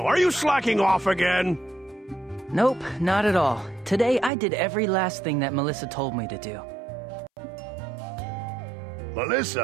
are you slacking off again? Nope, not at all. Today I did every last thing that Melissa told me to do.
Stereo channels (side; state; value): left; drops out; at 4.3 s